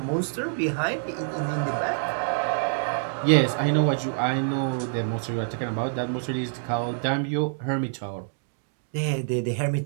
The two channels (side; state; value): left; silent; digital silence